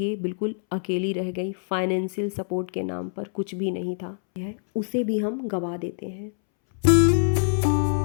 बिल्कुल अकेली रह गई। फाइनेंशियल सपोर्ट के नाम पर कुछ भी नहीं था, उसे भी हम गवा देते हैं।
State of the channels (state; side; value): silent; right; 62 dB below the other